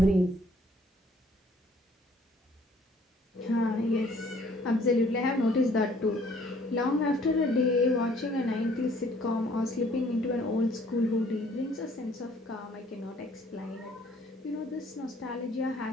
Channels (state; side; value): normal; both; correlation 0.60